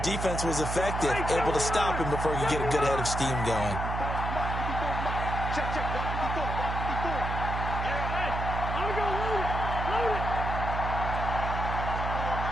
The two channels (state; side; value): noise; right; hum, 3 dB below the sound